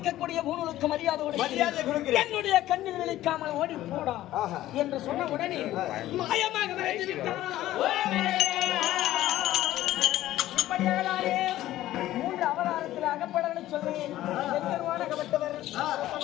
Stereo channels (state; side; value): quieter; right; 14.5 dB